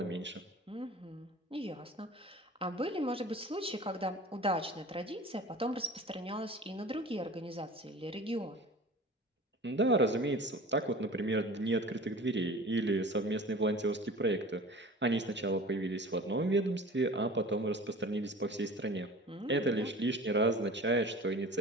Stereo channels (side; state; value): both; normal; correlation 0.40